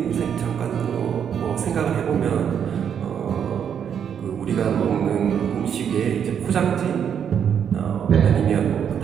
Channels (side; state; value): left; quieter; 8.2 dB